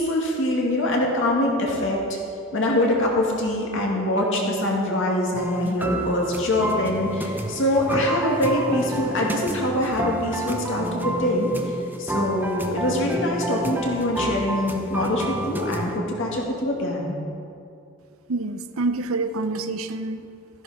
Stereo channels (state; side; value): normal; both; correlation 0.32